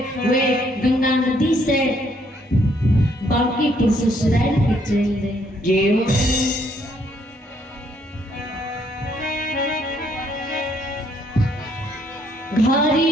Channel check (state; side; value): normal; both; correlation 0.69